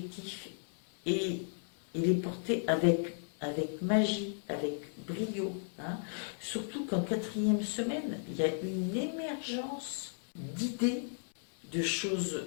et, les porter avec magie, avec brio, hein. Surtout qu'en quatrième semaine, il y a une émergence d'idées, de choses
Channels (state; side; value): silent; right; digital silence